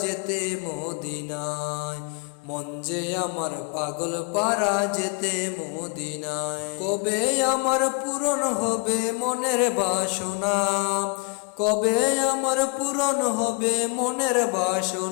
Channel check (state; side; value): quieter; right; 34.1 dB